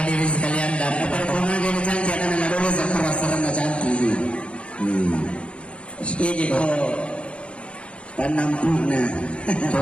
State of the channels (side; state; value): right; late; 0.059 ms